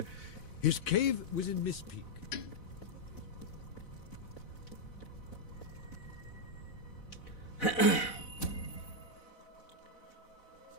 His cave was in Miss Peak.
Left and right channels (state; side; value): late; right; 4.0 ms